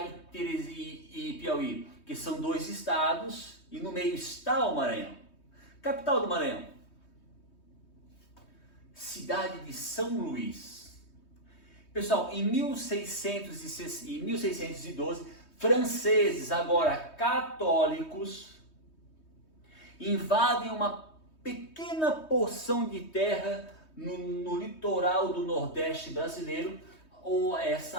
e Piauí? Porque são 2 estados e no meio está o Maranhão. Capital do Maranhão. Cidade de São Luís. Pessoal, em 1612, franceses, agora católicos, invadem uma pequena porção de terra no litoral do Nordeste brasileiro, ou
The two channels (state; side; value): late; right; 3.2 ms